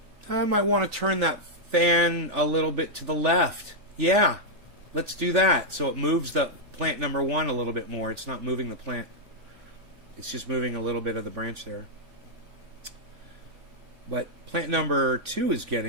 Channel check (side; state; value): left; late; 3.4 ms